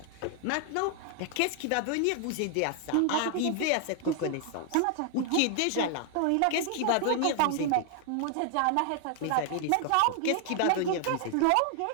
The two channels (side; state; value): both; different; correlation 0.00